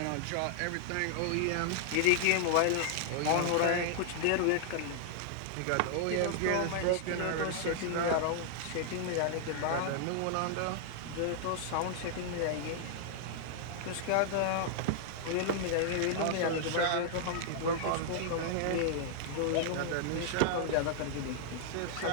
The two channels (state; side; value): different; both; correlation -0.01